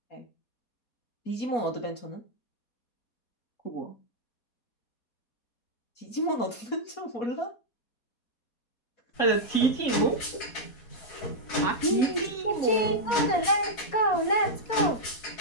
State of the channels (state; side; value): late; right; 4.2 ms